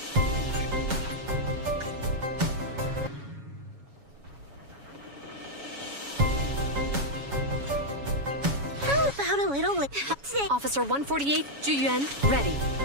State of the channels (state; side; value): late; left; 7.2 ms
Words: How about a little Officer 148, Juyuan, ready.